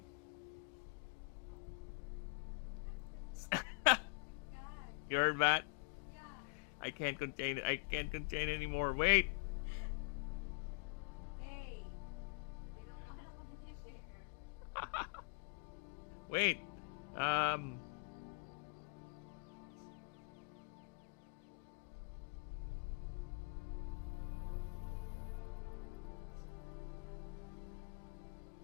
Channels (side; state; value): right; quieter; 31.3 dB